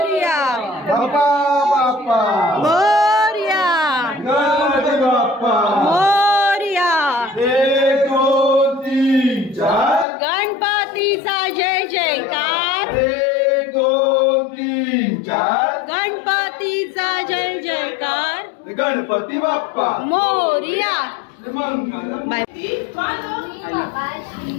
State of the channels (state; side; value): drops out; right; at 10.1 s